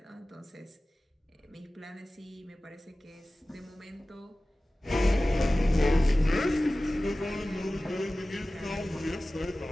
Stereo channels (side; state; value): both; normal; correlation 0.97